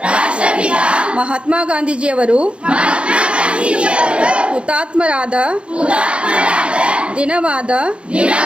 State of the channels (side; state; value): left; late; 0.058 ms